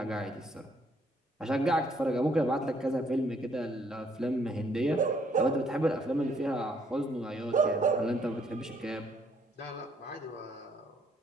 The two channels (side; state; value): both; normal; correlation 0.67